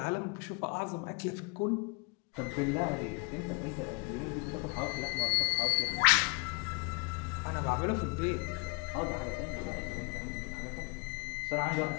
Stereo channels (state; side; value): quieter; right; 29.8 dB